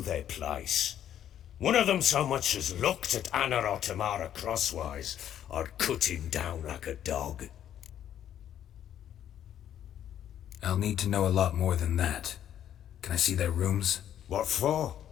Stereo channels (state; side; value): quieter; right; 10.5 dB